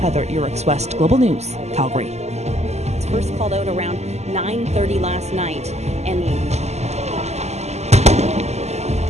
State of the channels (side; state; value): left; late; 0.32 ms